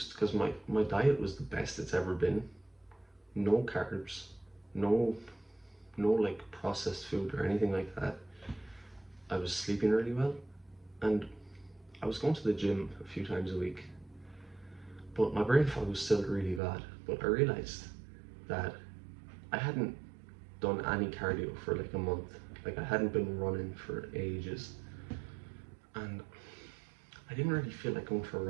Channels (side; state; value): left; drops out; at 16.6 s